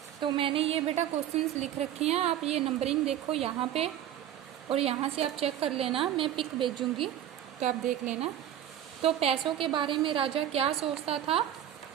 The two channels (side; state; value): left; quieter; 11.0 dB